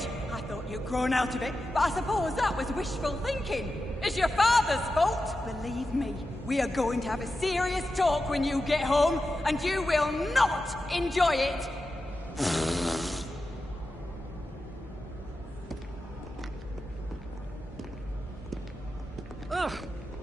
I thought you'd grown out of it, but I suppose that was wishful thinking. It's your father's fault! Believe me, we are going to have a serious talk when you get home, and you will not enjoy it! Ugh.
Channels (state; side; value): normal; both; correlation 0.91